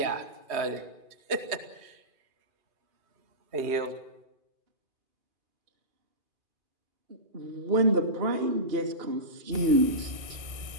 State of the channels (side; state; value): left; late; 2.5 ms